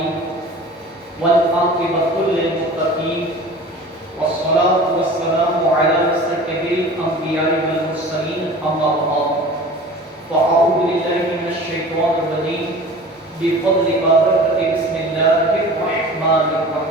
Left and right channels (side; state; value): both; normal; correlation 0.40